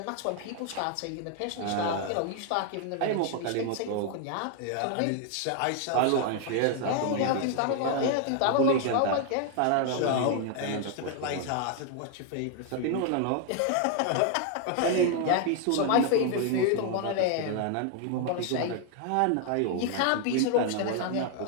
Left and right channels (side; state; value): both; different; correlation 0.00